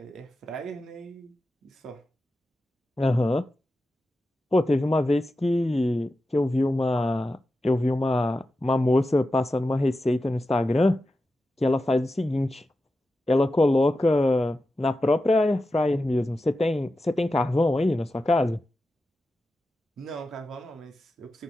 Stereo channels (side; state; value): both; normal; correlation 0.92